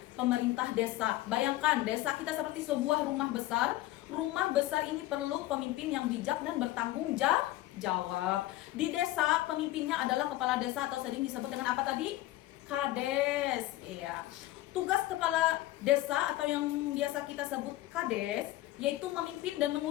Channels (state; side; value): quieter; right; 16.3 dB